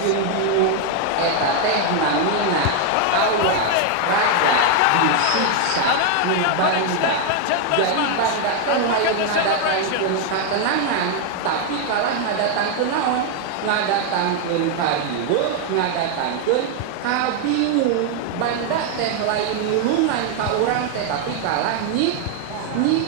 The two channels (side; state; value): both; different; correlation 0.00